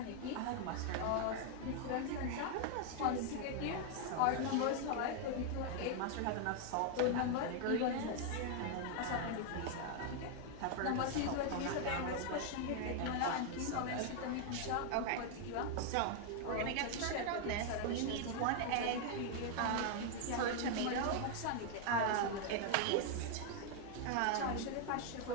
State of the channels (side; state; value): both; different; correlation 0.00